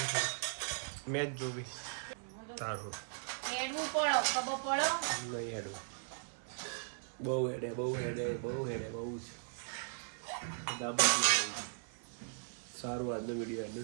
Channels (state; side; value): silent; left; 52 dB below the other